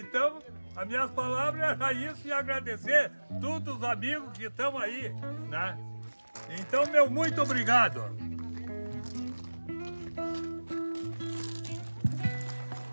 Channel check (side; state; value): both; inverted; correlation -1.00